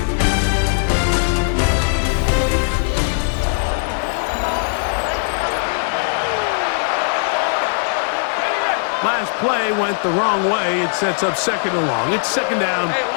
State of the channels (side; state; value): right; silent; 61 dB below the other